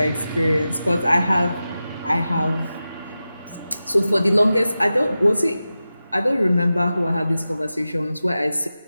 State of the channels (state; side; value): inverted; both; correlation -0.93